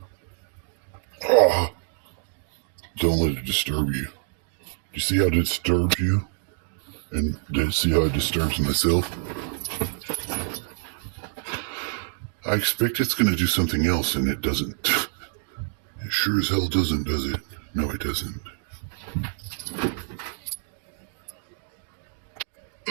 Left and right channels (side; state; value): left; silent; digital silence